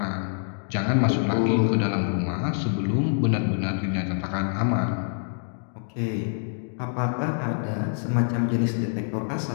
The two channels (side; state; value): right; silent; digital silence